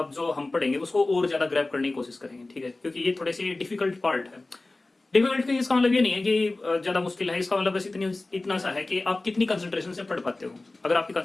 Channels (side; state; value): right; quieter; 3.0 dB